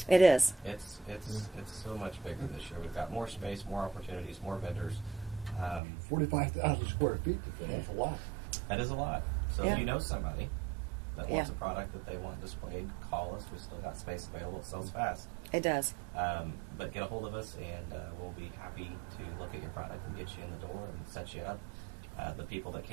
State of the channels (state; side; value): drops out; left; at 5.8 s